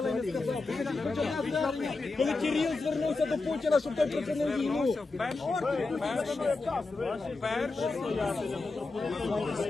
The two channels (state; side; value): quieter; right; 3.7 dB